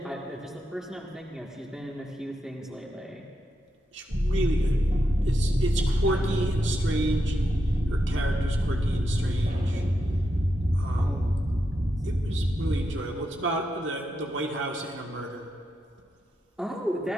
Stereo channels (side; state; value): both; normal; correlation 0.85